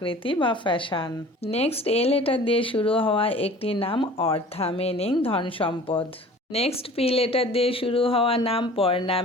বা ফ্যাশন। নেক্সট এ লেটার দিয়ে শুরু হওয়া একটি নাম অর্থা, মিনিং ধন সম্পদ। নেক্সট পি লেটার দিয়ে শুরু হওয়া নাম পর্ণা,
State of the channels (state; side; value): normal; both; correlation 0.45